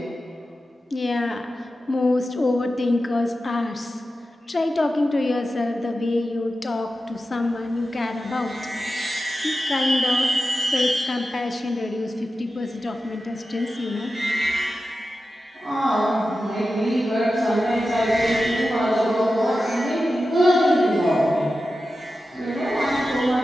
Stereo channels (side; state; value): both; normal; correlation 0.92